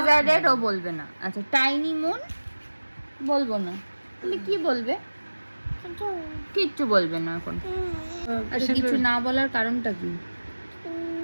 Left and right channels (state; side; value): inverted; both; correlation -1.00